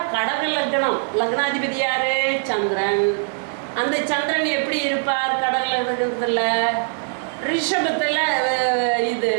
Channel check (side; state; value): left; silent; 65 dB below the other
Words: கடக லக்னம், லக்னாதிபதி யாரு? சந்திரன். அந்த சந்திரன் எப்படி இருப்பார் கடக லக்னத்தில்? ரிஷபத்தில் இது